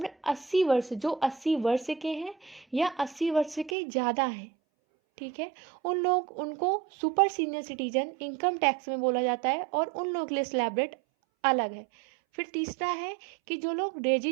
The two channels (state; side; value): drops out; left; at 3.8 s